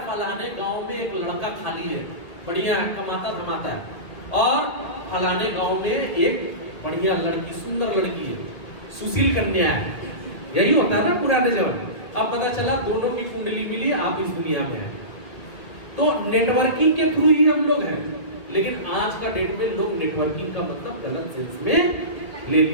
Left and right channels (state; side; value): late; right; 1.7 ms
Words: फलाने गांव में एक लड़का खाली है, बढ़िया है, कमाता धमाता है, और फलाने गांव में एक बढ़िया लड़की, सुंदर लड़की है, सुशील कन्या है। यही होता है ना पुराने जमाने। अब पता चला दोनों की कुंडली मिली, आप इस दुनिया में हैं। तो नेटवर्किंग के थ्रू ही हम लोग हैं, लेकिन आज का डेट में लोग नेटवर्किंग का मतलब गलत सेंस में ले